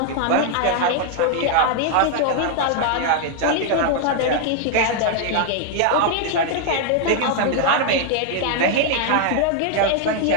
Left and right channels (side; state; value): both; different; correlation 0.00